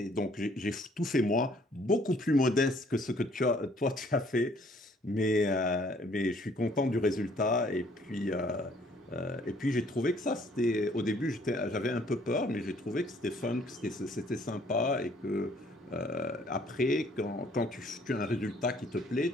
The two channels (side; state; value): both; normal; correlation 0.61